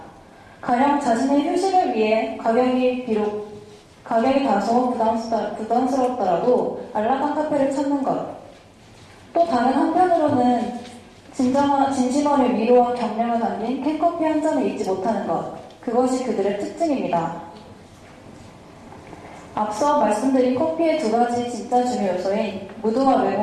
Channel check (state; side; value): identical; both; correlation 1.00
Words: 가령 자신의 휴식을 위해 가격이 다소 부담스럽더라도 안락한 카페를 찾는 것. 또 다른 한편으로는 진심어린 위로와 격려가 담긴 캔커피 한 잔을 잊지 못하는 것. 그것이 그들의 특징입니다. 앞서 말씀드린 커피의 두 가지 진짜 중요 요소인 무드와